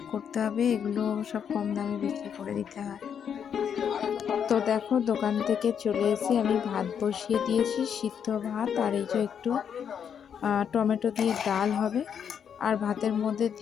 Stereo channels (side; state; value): right; quieter; 7.9 dB